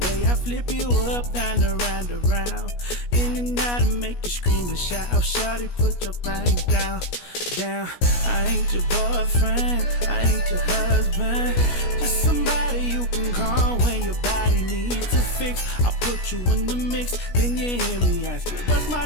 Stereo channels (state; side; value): late; right; 17 ms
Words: I flip you up, down, around, around, in and out, and make you scream and shout. Shawty, put your thing down, down. I ain't your boyfriend, I ain't your husband, just somebody you can call when your body needs a fix. I put you in the mix, then you hear me ask you, what's my